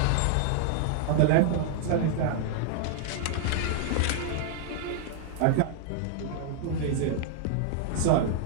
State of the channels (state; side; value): different; both; correlation -0.01